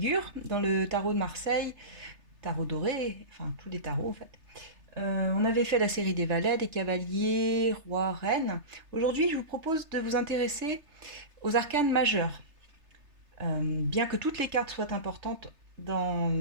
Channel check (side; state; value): left; late; 3.3 ms